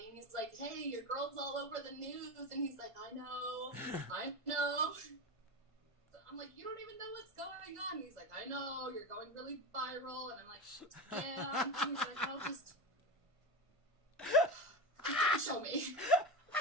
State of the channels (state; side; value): late; left; 1.5 ms